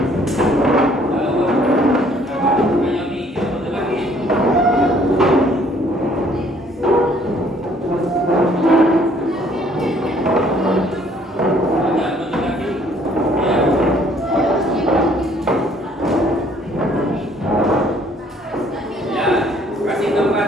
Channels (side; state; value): both; normal; correlation 0.61